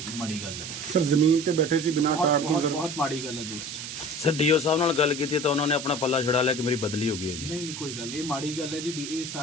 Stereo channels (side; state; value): right; noise; hiss, 8 dB below the sound